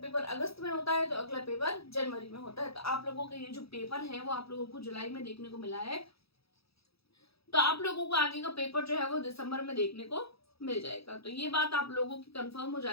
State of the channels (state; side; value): late; right; 0.77 ms